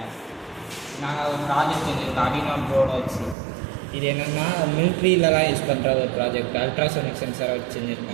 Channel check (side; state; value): left; drops out; at 3.4 s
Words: நாங்கள் ஒரு ப்ராஜெக்ட் செஞ்சுருக்கோம் அடினோ போர்டை வச்சு. இது என்னென்னா மிலிட்ரியிலலாம் யூஸ் பண்ணுற ஒரு ப்ராஜெக்ட். அல்ட்ராசோனிக் சென்சாரை வச்சு